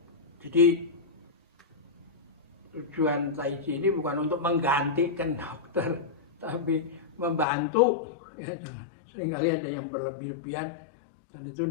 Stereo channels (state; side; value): drops out; right; at 7.5 s